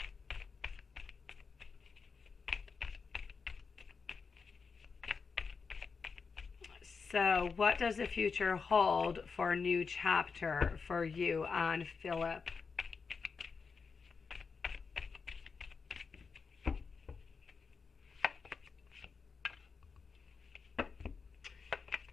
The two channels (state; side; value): quieter; right; 5.2 dB